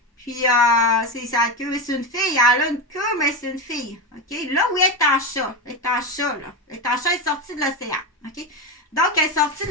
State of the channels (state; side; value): normal; both; correlation 0.15